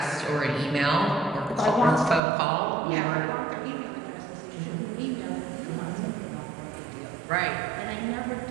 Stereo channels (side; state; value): left; drops out; at 2.2 s